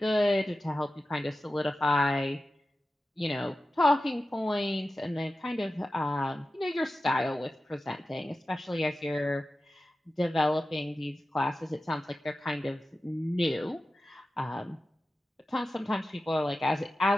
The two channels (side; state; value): both; normal; correlation 0.94